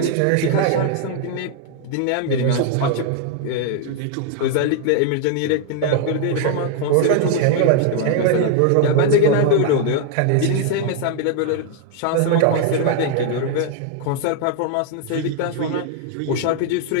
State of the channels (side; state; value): both; different; correlation 0.00